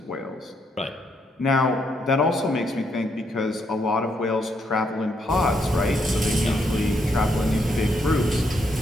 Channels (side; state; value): both; normal; correlation 0.76